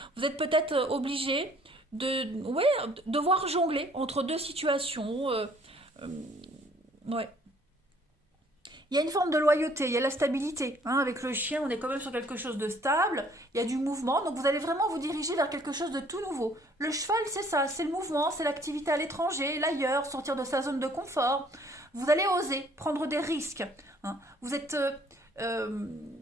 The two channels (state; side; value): normal; both; correlation 0.59